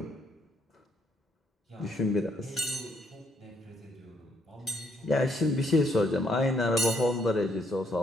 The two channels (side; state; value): both; normal; correlation 0.72